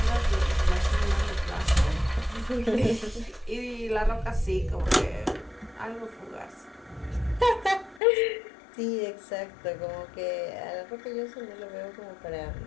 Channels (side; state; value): right; drops out; at 8.0 s